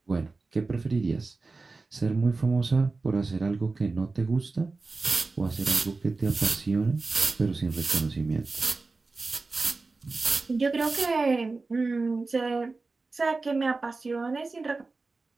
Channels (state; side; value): quieter; left; 3.8 dB